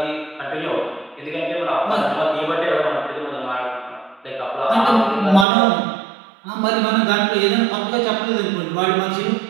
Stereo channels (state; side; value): drops out; left; at 5.5 s